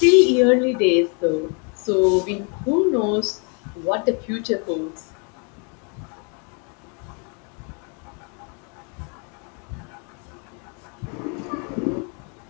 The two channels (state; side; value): quieter; right; 36.7 dB